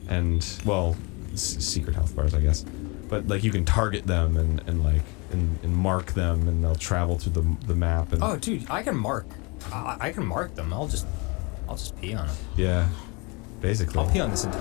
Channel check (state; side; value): quieter; right; 29.3 dB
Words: and well, secret health bars, I guess. But like you can target them and mark them, and they'll travel through the map. And Oh, dude, I can mark. I can mark them. I'll just pee on them. yeah, basically. I'll pee on this